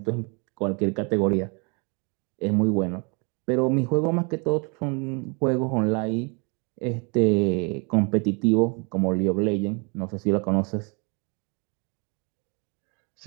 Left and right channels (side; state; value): left; quieter; 33.3 dB